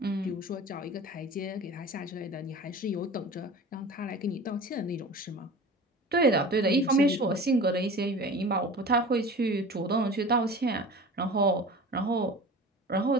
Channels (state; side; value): normal; both; correlation 0.37